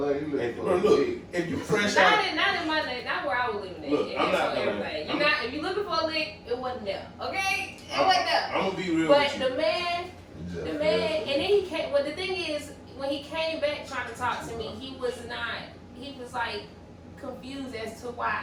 LA, he And, looking bro, for a look, dick. if you fresh Not out, in my name, not where I was living at. Look, It I'm is not for gonna- everybody. I'm- If you're looking for a lick, it wasn't there. Okay? It wasn't there. I'm gonna be real But with you. the man, and then he came, well the thing is, when he came back trying to talk to me, he was like confused as to why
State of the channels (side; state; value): both; identical; correlation 1.00